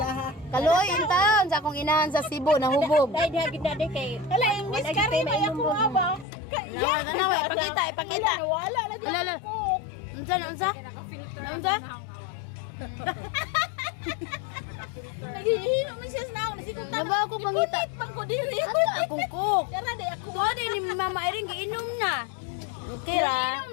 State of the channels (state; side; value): drops out; right; at 6.2 s